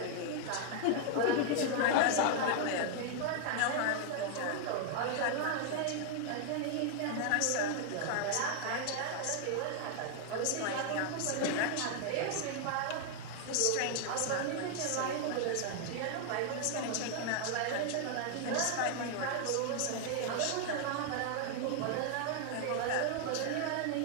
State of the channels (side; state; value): both; different; correlation 0.00